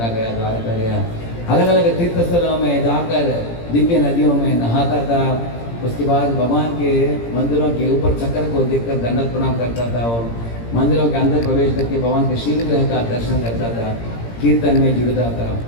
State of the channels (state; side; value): late; right; 17 ms